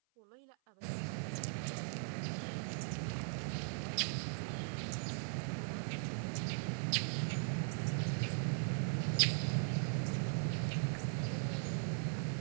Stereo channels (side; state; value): left; silent; 52 dB below the other